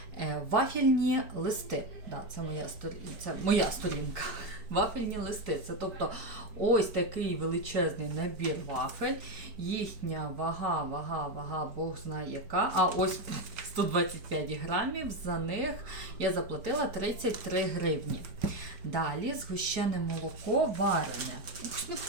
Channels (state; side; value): late; left; 4.6 ms